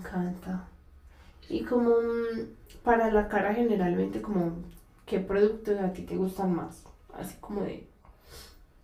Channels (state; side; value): identical; both; correlation 1.00